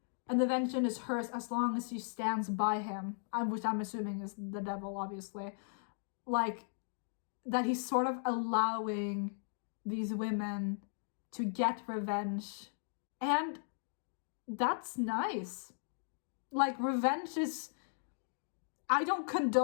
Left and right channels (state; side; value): silent; right; digital silence